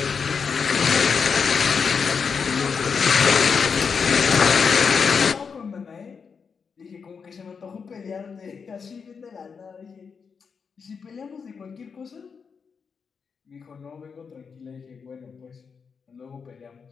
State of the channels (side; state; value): right; quieter; 5.8 dB